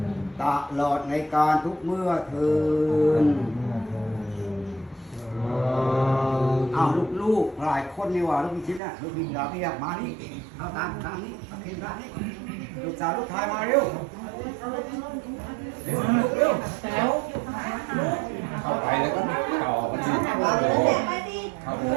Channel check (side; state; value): left; drops out; at 8.8 s